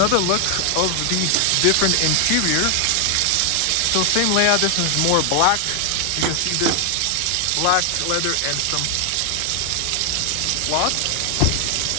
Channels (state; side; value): different; both; correlation 0.00